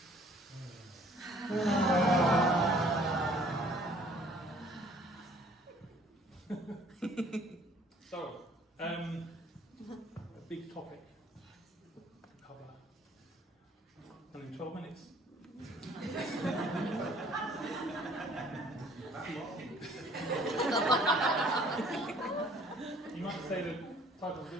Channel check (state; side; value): normal; both; correlation 0.57